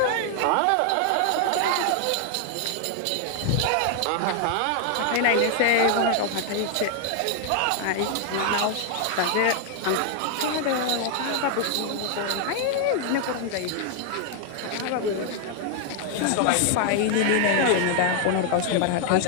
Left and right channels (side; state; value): both; different; correlation 0.00